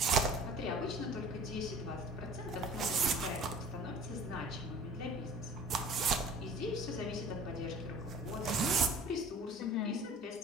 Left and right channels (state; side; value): normal; both; correlation 0.45